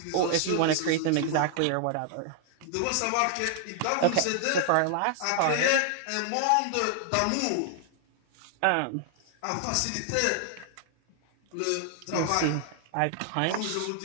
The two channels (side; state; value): both; different; correlation 0.00